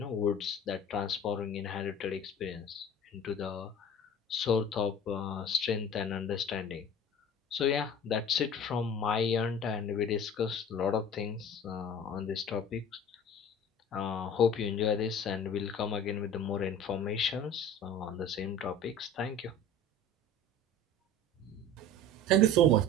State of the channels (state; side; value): normal; both; correlation 0.41